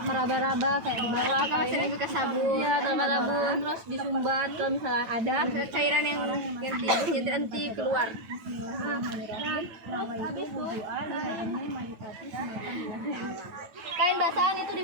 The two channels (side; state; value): left; late; 9.1 ms